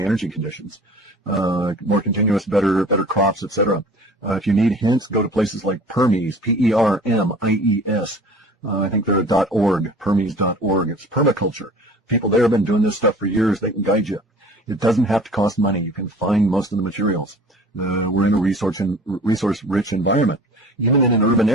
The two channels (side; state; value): both; normal; correlation 0.45